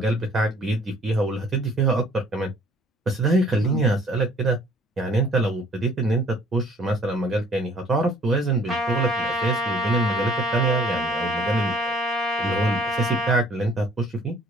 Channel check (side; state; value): both; normal; correlation 0.57